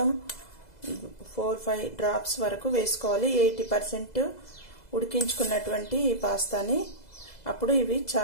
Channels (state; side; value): late; right; 2.0 ms